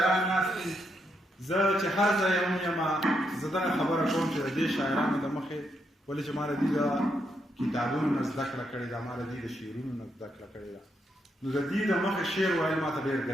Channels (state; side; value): normal; both; correlation 0.79